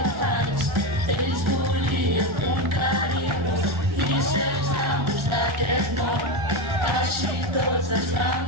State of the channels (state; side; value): late; left; 1.4 ms